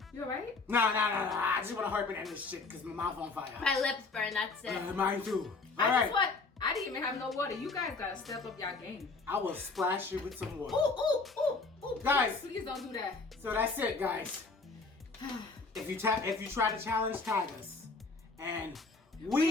You alright? Nah. I just want to harp in this shit because my mouth on fire. My lips burn, that's it. Mine too. I All right. just what? I didn't even have no water. You guys gotta step up y'all game. I will splash you with some water. Ooh. Guys. Please don't do that. So that's it, guys. If you try to challenge, tag us. And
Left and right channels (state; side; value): quieter; right; 4.0 dB